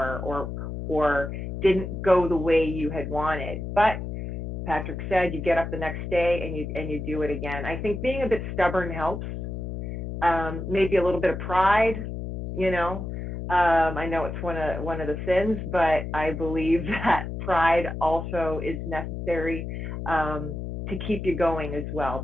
or didn't go the way you had wanted. But Patrick said, you get up the next day and you do it again. I think being a bit stubborn helps. Maybe a little bit of pride, I know it's one of the sins, but I believe that pride also is necessary to keep you going as well,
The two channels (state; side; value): noise; left; hum, 6 dB below the sound